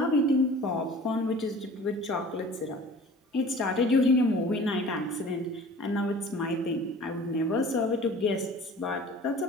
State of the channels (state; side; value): normal; both; correlation 0.44